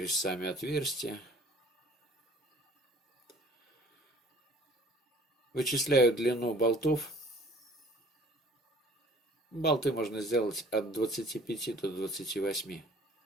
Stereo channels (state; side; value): normal; both; correlation 0.53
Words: сами отверстия. Вычисляю длину болтов. Болты можно сделать от 25 до 28.